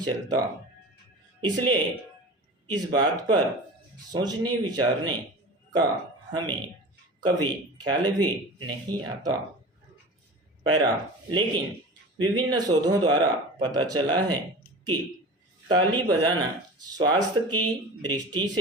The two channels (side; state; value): both; normal; correlation 0.34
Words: चलता। इसलिए इस बात पर सोचने विचारने का हमें कभी ख्याल भी नहीं आता। पैरा, लेकिन विभिन्न शोधों द्वारा पता चला है कि ताली बजाना स्वास्थ्य की दृष्टि